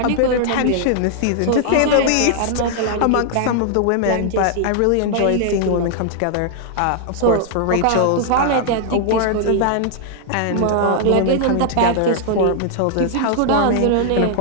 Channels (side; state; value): both; different; correlation -0.01